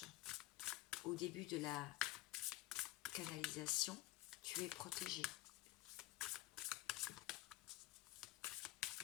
au début de la canalisation, tu es protégé.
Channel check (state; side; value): quieter; right; 17.1 dB